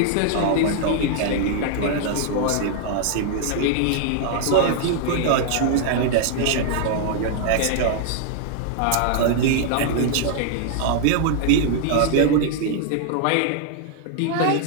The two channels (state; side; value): different; both; correlation 0.00